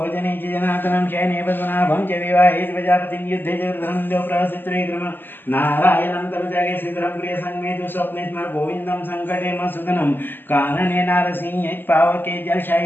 च जनार्दनं शयने पद्मनाभं च विवाहे प्रजापतिं युद्धे च रुद्रं देवप्रहसित्रेक्रम नारायणं तनुजागे श्रीधरं प्रिय संमेतु स्वप्ने स्मर गोविन्दं संकटे मसुदनं कानने नारसिंह पावके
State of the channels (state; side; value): late; right; 0.094 ms